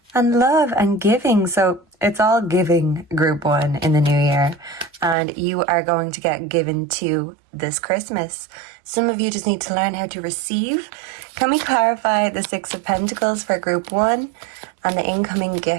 and love and giving. So it's all giving, group 1, in the new year. And you are going to get given to this Christmas. Some of you just need to learn how to receive. Can we clarify the 6 of Pentacles for group 1 and the incoming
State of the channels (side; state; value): left; drops out; at 5.2 s